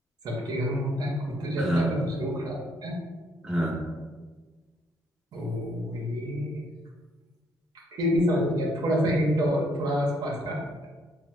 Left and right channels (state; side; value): normal; both; correlation 0.69